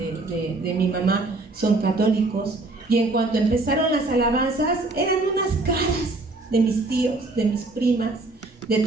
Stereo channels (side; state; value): left; quieter; 3.1 dB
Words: mi mamá son católicos, y en cuanto empezaron las alabanzas, eran unas caras de mis tíos, de mis primas, de